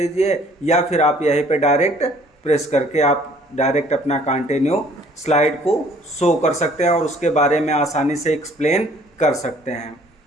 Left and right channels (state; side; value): normal; both; correlation 0.57